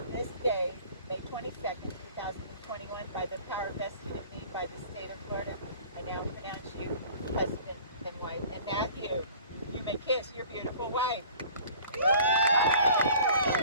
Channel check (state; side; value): inverted; both; correlation -0.48